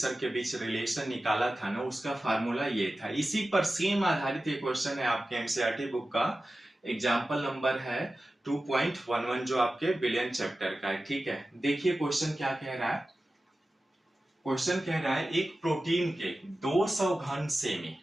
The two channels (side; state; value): both; normal; correlation 0.95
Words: के बीच रिलेशन निकाला था ना, उसका फार्मूला ये था। इसी पर सेम आधारित एक क्वेश्चन है आपके एनसीईआरटी बुक का। एग्जाम्पल नंबर है 2.11 जो आपके बिलियन चैप्टर का है। ठीक है, देखिए क्वेश्चन क्या कह रहा है। क्वेश्चन कह रहा है एक प्रोटीन के 200 घन सेमी